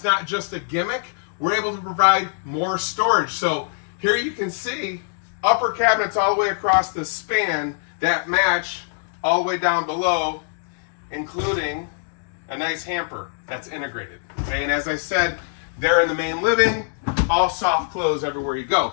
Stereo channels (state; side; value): silent; right; digital silence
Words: not just a gimmick, we're able to provide more storage. So here you can see upper cabinets all the way across the span that match all the way down below, including a nice hamper that's integrated. Okay, and as I said, there in the main living, all soft close everywhere you